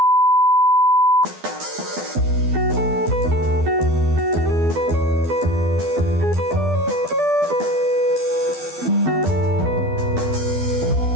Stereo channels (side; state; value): left; late; 12 ms